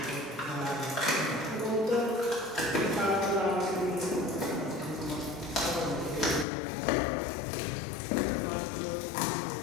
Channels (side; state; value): right; drops out; at 6.5 s